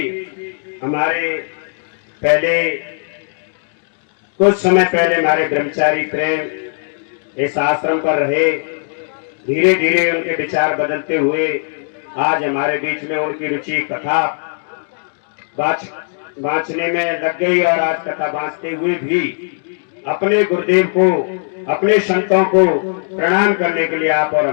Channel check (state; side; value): silent; right; 63 dB below the other